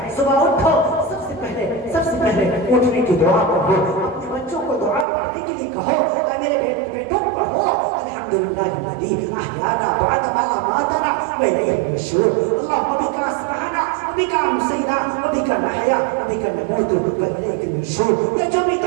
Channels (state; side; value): drops out; left; at 5.1 s